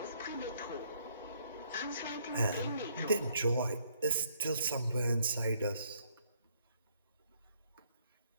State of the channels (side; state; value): both; inverted; correlation -0.68